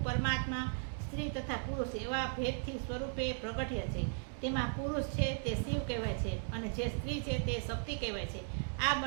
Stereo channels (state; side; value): silent; left; 53 dB below the other